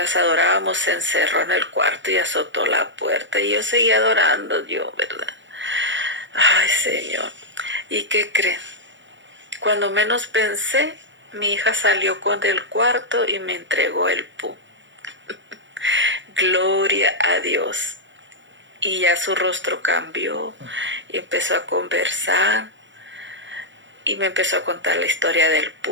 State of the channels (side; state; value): left; late; 0.54 ms